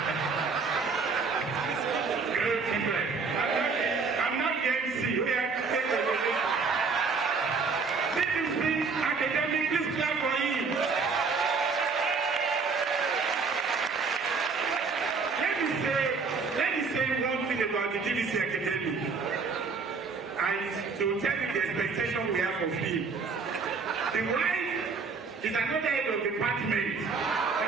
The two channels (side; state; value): left; quieter; 4.8 dB